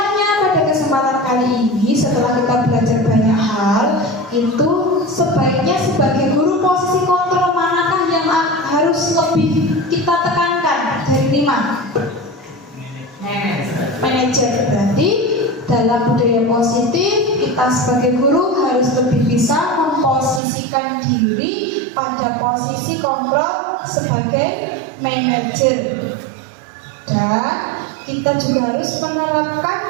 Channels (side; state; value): left; drops out; at 20.4 s